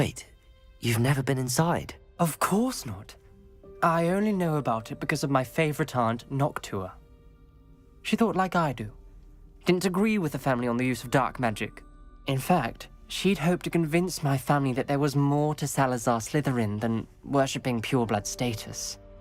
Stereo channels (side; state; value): both; identical; correlation 1.00